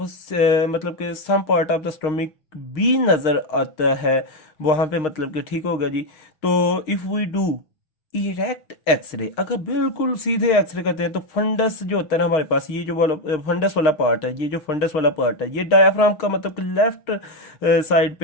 मतलब कि some part of the stomach भी नजर आता है वहां पे, मतलब कि ठीक होगा जी। तो if we do erect x-ray, अगर बिल्कुल सीधे एक्सरे करते हैं तो फंडस जो होता है ना हमारे पास, ये जो वाला फंडस वाला पार्ट है, ये जो फंडस वाला पार्ट है ये डायाफ्राम का मतलब कि लेफ्ट साइड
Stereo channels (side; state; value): right; late; 6.5 ms